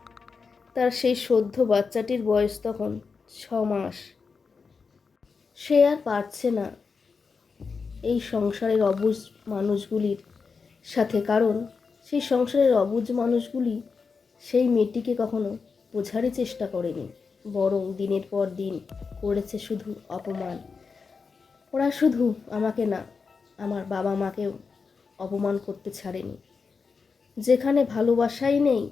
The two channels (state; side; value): quieter; right; 5.1 dB